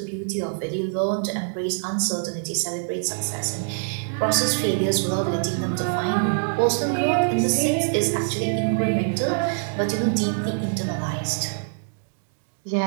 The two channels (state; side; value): silent; left; digital silence